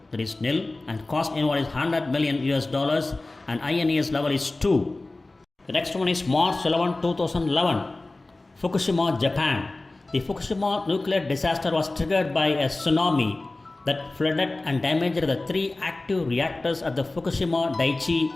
That is nil, and cost involved is 100 million US dollars, and INES level is 2. The next one is March 11, 2011, Fukushima, Japan. The Fukushima nuclear disaster was triggered by a tsunami that flooded and damaged the 3 active reactors at the Fukushima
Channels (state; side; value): quieter; right; 3.0 dB